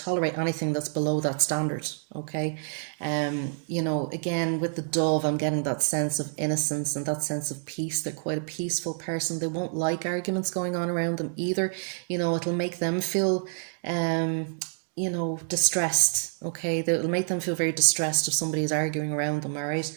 anything that's below that standard, okay? Again, with the dove, I'm getting that sense of innocence and that sense of peace. They're quite a peaceful person. They won't like arguments going on around them either. It'll make them feel, distressed, okay? It'll make them feel very distressed if somebody is arguing around them, all right?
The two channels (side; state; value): left; silent; digital silence